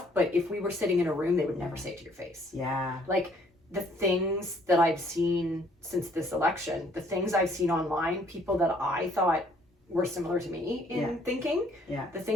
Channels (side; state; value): both; normal; correlation 0.62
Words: but if we were sitting in a room, they would never say it to your face. Yeah. Like the things that I've seen since this election, the things I've seen online, people that I thought were similar to me in thinking, the